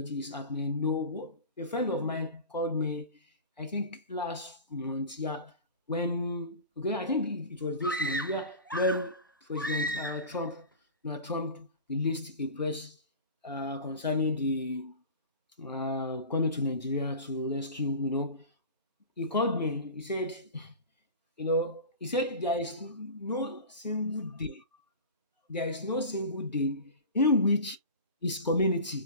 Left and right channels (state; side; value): inverted; both; correlation -0.34